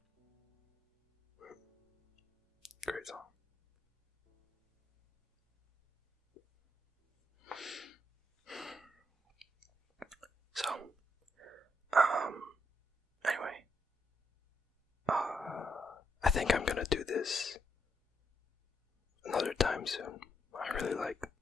Great song. So, anyway, I think I'm gonna do this another time soon. I really like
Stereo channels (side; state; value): both; normal; correlation 0.78